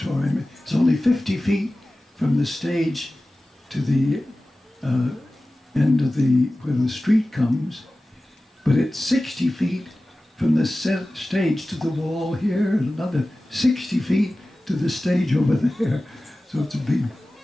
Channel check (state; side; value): normal; both; correlation 0.96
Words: It's only 50 feet from the stage to the end of where the street comes, but it's 60 feet from the stage to the wall here, and another 60 feet to the stage over there. So it's a big,